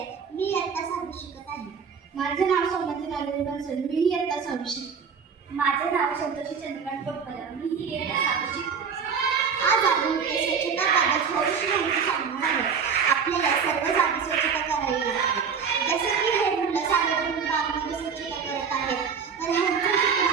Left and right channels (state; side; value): quieter; left; 6.3 dB